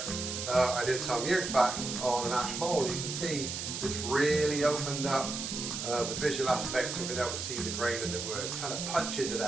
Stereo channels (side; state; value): right; noise; hiss, 4 dB below the sound